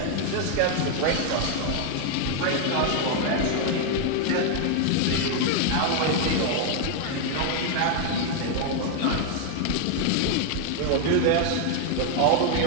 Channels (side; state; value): both; different; correlation 0.01